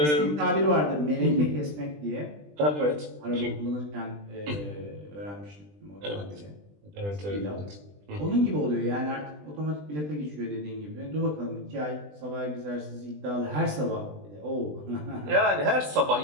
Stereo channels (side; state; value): left; late; 20 ms